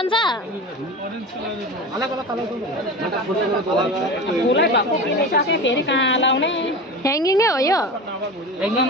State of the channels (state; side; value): normal; both; correlation 0.30